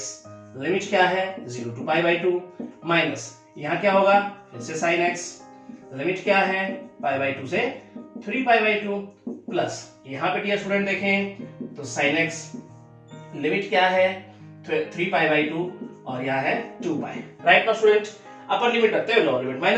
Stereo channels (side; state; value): both; identical; correlation 1.00